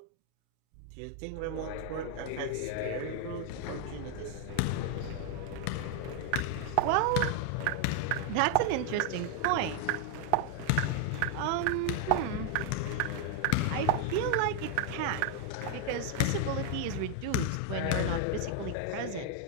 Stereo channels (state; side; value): different; both; correlation 0.00